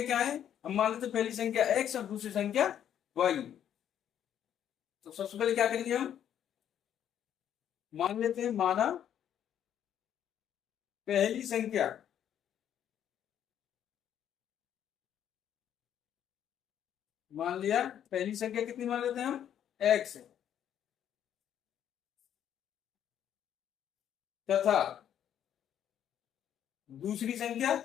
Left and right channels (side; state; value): right; quieter; 9.9 dB